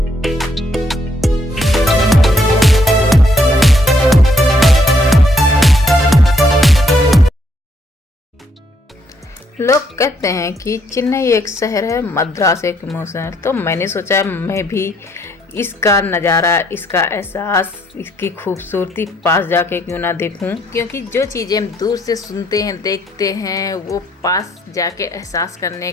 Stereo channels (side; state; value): both; normal; correlation 0.71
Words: लोग कहते हैं कि चेन्नई एक शहर है, मद्रास एक इमोशन। तो मैंने सोचा मैं भी इसका नज़ारा, इसका एहसास, इसकी खूबसूरती पास जाके क्यों ना देखूं। क्योंकि जो चीज़ें हम दूर से सुनते हैं, देखते हैं, वो पास जाके एहसास करने